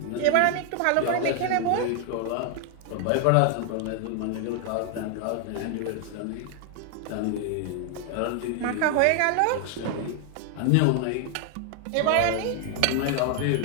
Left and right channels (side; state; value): both; different; correlation 0.00